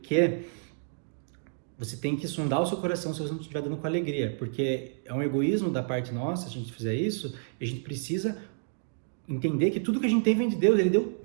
que você tem que sondar o seu coração se você não estiver dando com alegria, porque é um egoísmo da parte nossa, se a gente fizer isso, e a gente precisa entender que tudo que a gente tem vem de Deus, Ele deu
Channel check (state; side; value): silent; left; digital silence